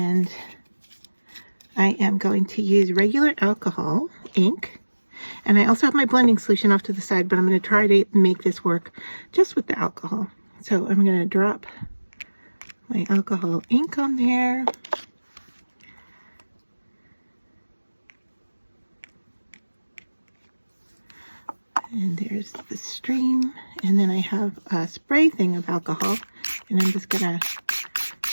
I am going to use regular alcohol ink. And I also have my blending solution off to the side, but I'm going to try to make this work just with the alcohol. So I'm going to drop my alcohol ink on there. And there's the Stream. And then I have a spray thing of alcohol, and I'm just going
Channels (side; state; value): both; inverted; correlation -1.00